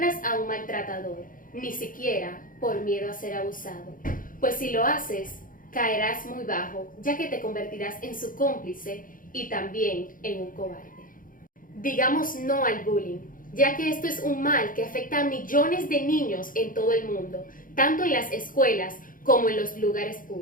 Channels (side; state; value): right; late; 0.40 ms